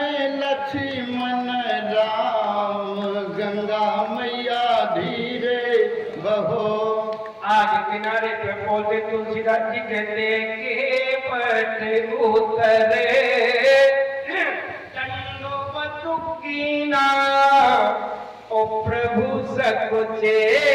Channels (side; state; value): both; identical; correlation 1.00